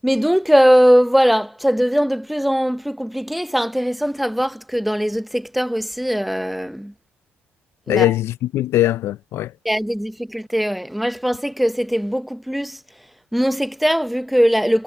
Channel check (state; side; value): normal; both; correlation 0.93